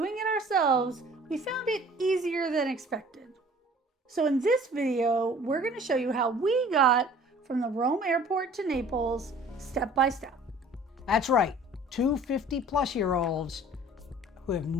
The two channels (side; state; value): both; normal; correlation 0.50